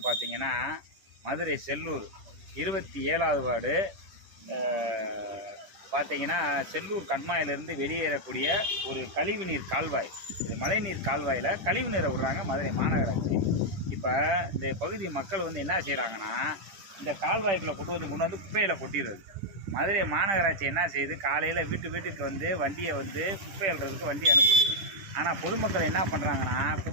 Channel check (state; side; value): late; left; 10 ms